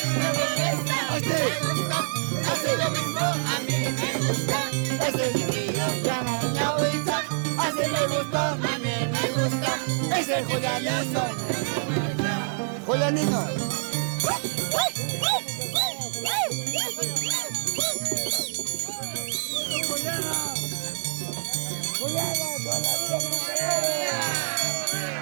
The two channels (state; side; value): silent; left; digital silence